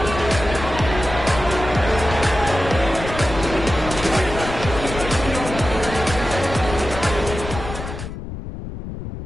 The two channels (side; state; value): left; noise; rumble, 8 dB below the sound